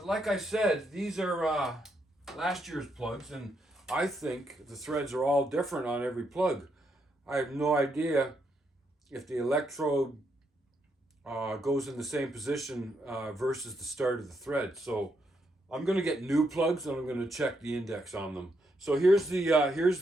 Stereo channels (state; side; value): normal; both; correlation 0.78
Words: like I said, these are last year's plugs, and I think the threads are all different on every plug. I have no idea if the electrode goes in the same position versus the start of the thread. So I'm going to get new plugs, and I'm going to check the index on them. So here's